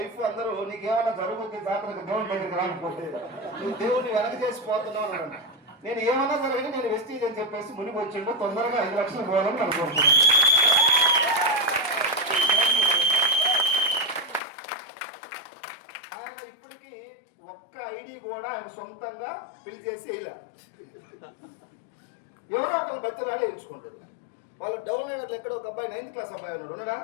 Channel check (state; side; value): drops out; right; at 14.4 s